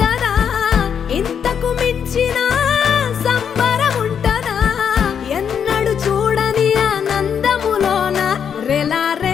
ఇంతకు మించిన సంబరం ఉంటదా ఎన్నడు చూడని ఆనందములోన రెలా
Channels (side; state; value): right; quieter; 7.7 dB